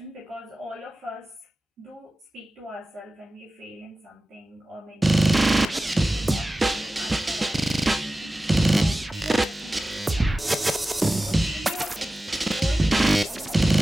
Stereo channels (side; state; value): both; normal; correlation 0.95